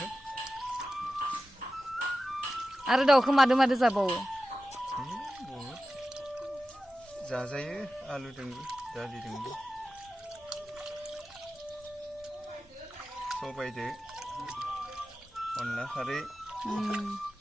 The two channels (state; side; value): normal; both; correlation 0.93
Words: आरो दाउखौ मादो मादो जाबावो? बहुद जाजायो आलुजोंबो दालिजोंबो सबायदो अनला खारै